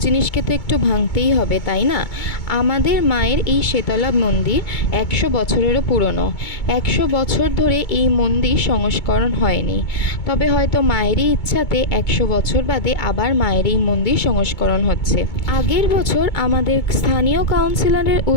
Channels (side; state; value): right; late; 2.2 ms